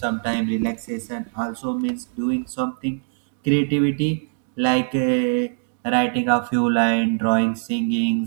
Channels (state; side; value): silent; left; 59 dB below the other